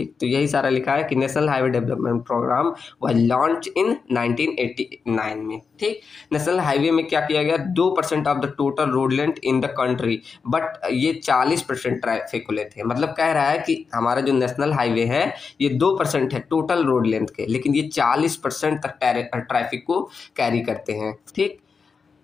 तो यही सारा लिखा है कि national highway development programme was launch in 1989 में, ठीक। नेशनल हाईवे में क्या किया गया, 2% of the total road length in the country, but ये 40% ट्रैफिक को लेते हैं। मतलब कह रहा है कि हमारा जो नेशनल हाईवे है ये 2% है टोटल रोड लेंथ के, लेकिन ये 40% तक ट्रैफिक को कैरी करते हैं, ठीक।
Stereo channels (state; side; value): quieter; right; 5.3 dB